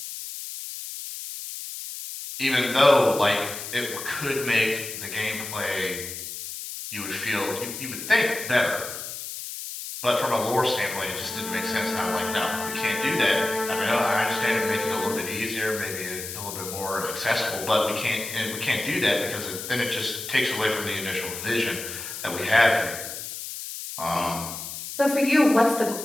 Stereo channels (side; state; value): left; noise; hiss, 8 dB below the sound